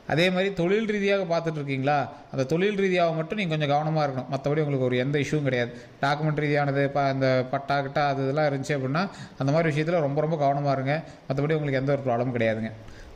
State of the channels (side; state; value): both; identical; correlation 1.00